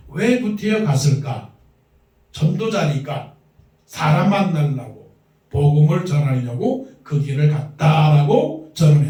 왜 구태여 갔을까? 전도자니까 사람 만나려고 복음을 전하려고 그 길을 갔다라고 저는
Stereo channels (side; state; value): both; identical; correlation 1.00